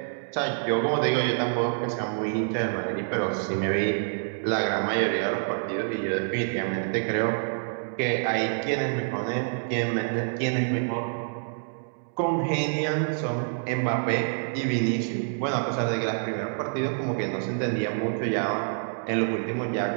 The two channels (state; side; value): silent; left; digital silence